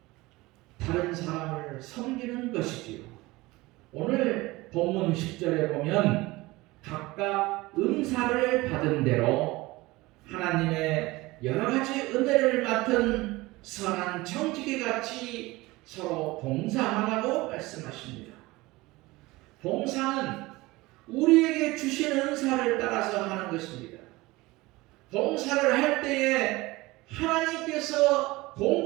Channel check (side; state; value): left; quieter; 20.7 dB